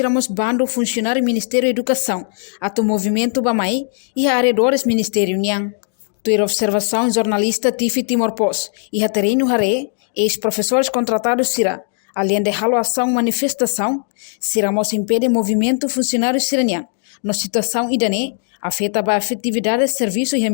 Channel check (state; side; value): silent; right; 58 dB below the other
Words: bando funcionário Ministério da Educação, ato movimento Bamai e arredores Ministério Niang. Tua observação jornalista Tifi Timor Pos e Haterino Hare, ex-professores contratados será, além de ação manifestação, seremos impede movimento funcionário siraniang, na situação idane, afeta a efetividade de serviço e o